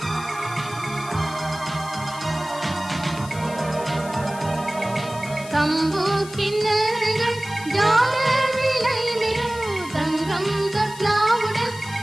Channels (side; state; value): left; noise; hiss, 16 dB below the sound